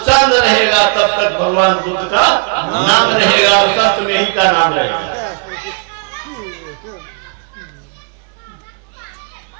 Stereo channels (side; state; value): left; quieter; 37.6 dB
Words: रहेगा तब तक भगवान बुद्ध का नाम रहेगा और संत में ही का नाम रहेगा।